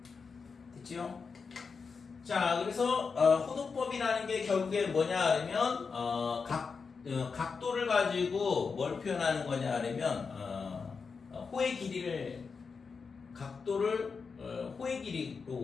됐지요? 자, 그래서 호도법이라는 게 결국에 뭐냐 하면 각도를 가지고 뭘 표현하는 거냐 하면 호의 길이를 각도를 호의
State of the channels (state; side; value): quieter; right; 5.2 dB